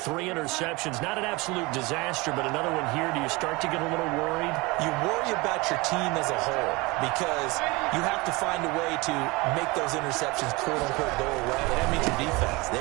interceptions. Not an absolute disaster, but another one here. Do you start to get a little worried? You worry about your team as a whole because you have to find a way to make those interceptions, quote-unquote, go away. And that means your defense.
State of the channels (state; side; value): quieter; left; 24.3 dB